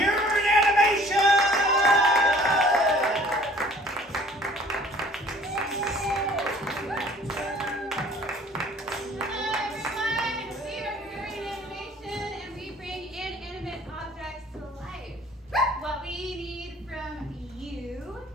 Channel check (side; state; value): both; normal; correlation 0.53